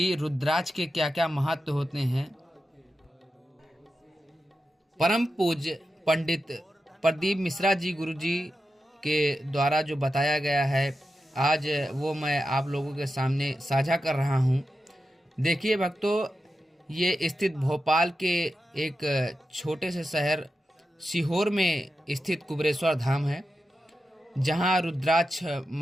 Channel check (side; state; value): both; normal; correlation 0.90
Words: रुद्राक्ष के क्या क्या महत्व होते हैं। परम पूज्य पंडित प्रदीप मिश्रा जी गुरु जी के द्वारा जो बताया गया है, आज वो मैं आप लोगों के सामने साझा कर रहा हूँ। देखिए भक्तों, ये स्थित भोपाल के एक छोटे से शहर सीहोर में स्थित कुबेरेश्वर धाम है, जहाँ रुद्राक्ष